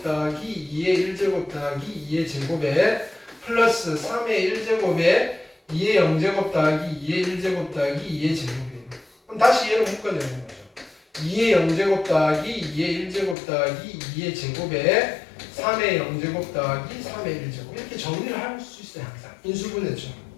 더하기 2의 1제곱 더하기 2의 제곱에 플러스 3의 1제곱에 2의 0제곱 더하기 2의 1제곱 더하기 2의 제곱이에요. 그럼 다시 얘를 묶어내는 거죠. 2의 0제곱 더하기 2의 1제곱 더하기 2의 제곱에 3의 0제곱 더하기 3의 1제곱 이렇게 정리를 할 수 있어요. 항상 인수분해죠.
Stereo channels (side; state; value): right; drops out; at 13.4 s